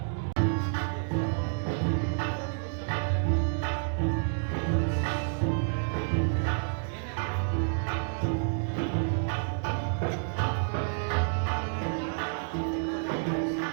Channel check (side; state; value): left; silent; digital silence